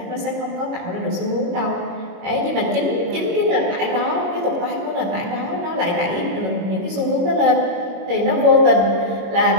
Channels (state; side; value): late; left; 21 ms